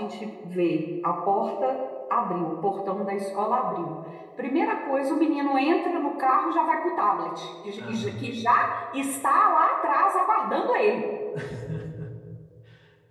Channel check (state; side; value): identical; both; correlation 1.00